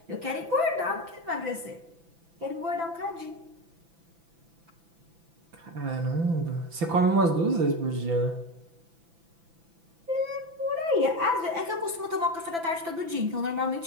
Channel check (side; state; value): left; late; 6.0 ms